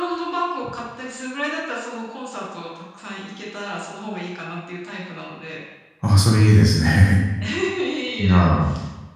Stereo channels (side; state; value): both; identical; correlation 1.00